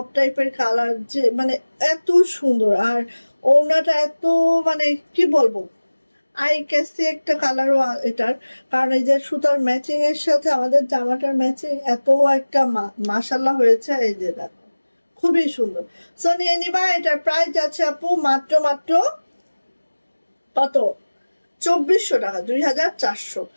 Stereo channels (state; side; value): inverted; both; correlation -1.00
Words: টাইপের কালার, যে মানে এত সুন্দর। আর ওড়নাটা এত মানে কি বলবো, আই ক্যাসি একটা কালারও এটার, কারণ এই যে সুতার ম্যাচিং এর সাথে আমাদের জামাটার ম্যাচিং এত একটা মাশাআল্লাহ হয়েছে। এই যে দেখো খুবই সুন্দর। সো নিয়ে নিবা। এটার প্রাইস যাচ্ছে আপু মাত্র কত? 2400 টাকা, 2400।